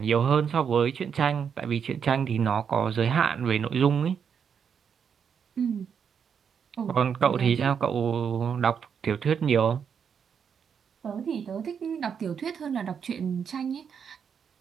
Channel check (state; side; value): quieter; left; 7.2 dB